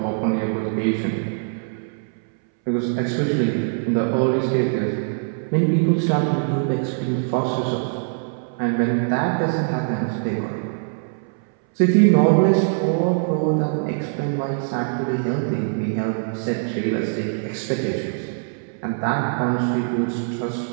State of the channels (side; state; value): left; silent; 62 dB below the other